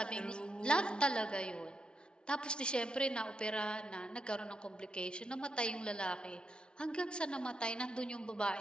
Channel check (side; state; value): right; late; 0.055 ms